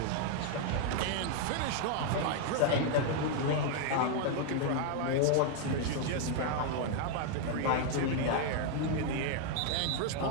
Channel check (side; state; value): both; different; correlation 0.00